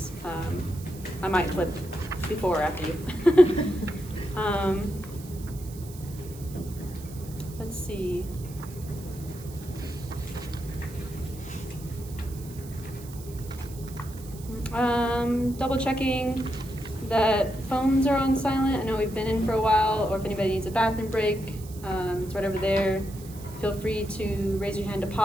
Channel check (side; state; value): right; noise; hiss, 19 dB below the sound